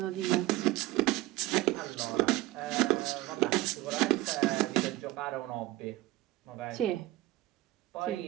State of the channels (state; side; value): quieter; left; 17.7 dB